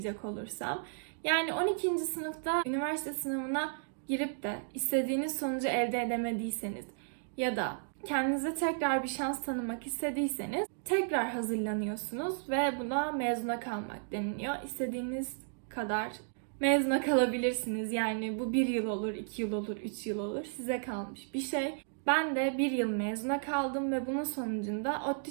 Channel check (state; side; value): silent; left; digital silence